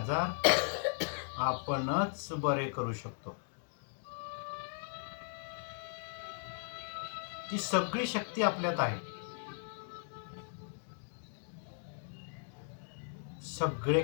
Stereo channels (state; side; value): silent; right; digital silence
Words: आपणच बरे करू शकतो. ती सगळी शक्ती आपल्यात आहे. सगळे